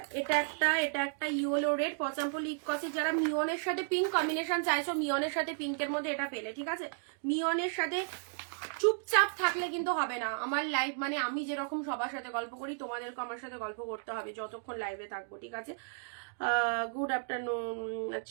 এটা একটা ইয়েলো রেড পচামপল্লি ইকো সিল্ক, যারা মিওনের সাথে পিঙ্ক কম্বিনেশন চাইছো, মিওনের সাথে পিঙ্কের মধ্যে এটা পেলে, ঠিক আছে। মিওনের সাথে চুপচাপ থাকলে কিন্তু হবে না আমার লাইভ, মানে আমি যেরকম সবার সাথে গল্প করি তোমাদেরকে আমার সাথে গল্প করতে হবে যতক্ষণ লাইভে থাকবো, ঠিক আছে। Good afternoon.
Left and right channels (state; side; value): silent; left; digital silence